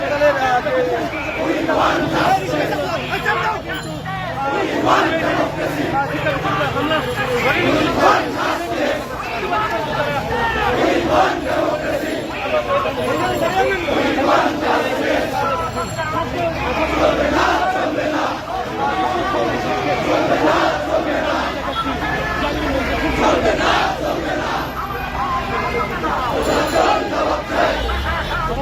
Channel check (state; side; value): identical; both; correlation 1.00